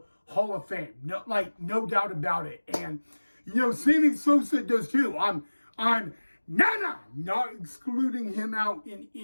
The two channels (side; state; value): both; inverted; correlation -1.00